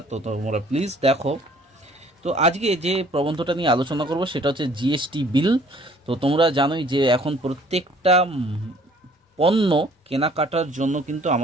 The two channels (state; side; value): normal; both; correlation 0.56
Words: তো তোমরা প্লিজ দেখো। তো আজকে যে প্রবন্ধটা নিয়ে আলোচনা করব সেটা হচ্ছে জিএসটি বিল। তো তোমরা জানোই যে এখন প্রত্যেকটা পণ্য কেনাকাটার জন্য কিন্তু